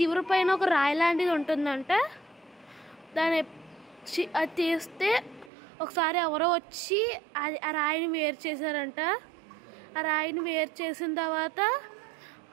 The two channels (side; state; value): left; drops out; at 5.5 s